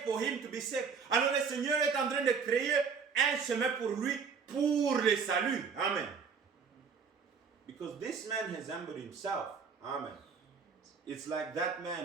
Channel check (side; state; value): left; quieter; 5.9 dB